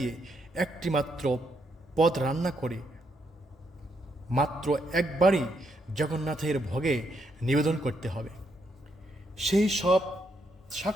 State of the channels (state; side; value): normal; both; correlation 0.77